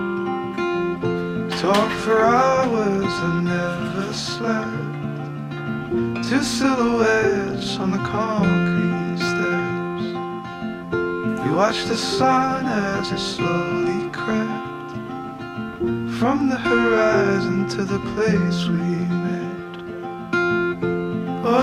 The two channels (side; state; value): both; identical; correlation 1.00